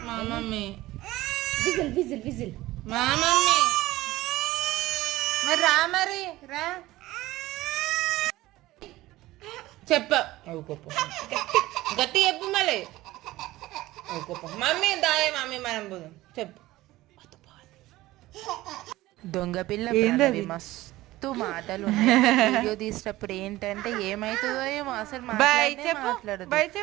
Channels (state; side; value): quieter; left; 17.4 dB